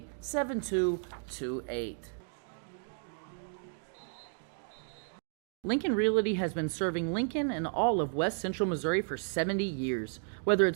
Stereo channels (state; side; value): silent; left; 56 dB below the other